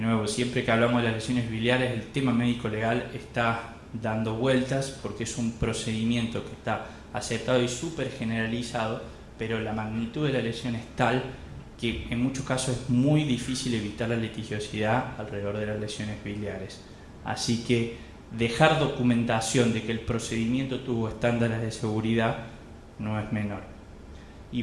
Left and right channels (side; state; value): both; identical; correlation 1.00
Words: nuevo, siempre que hablamos de las lesiones biliares, el tema médico-legal está dando vueltas porque es un procedimiento que está aceptado y súper generalizado, pero la magnitud de la lesión es tal que en muchos casos es muy difícil evitar la litigiosidad alrededor de las lesiones biliares. Así que dejar documentación de que el procedimiento tuvo estándares de seguridad no es menor. Y